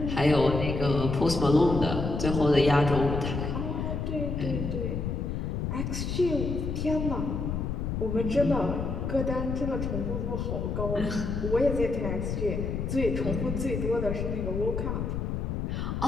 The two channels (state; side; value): noise; left; rumble, 2 dB below the sound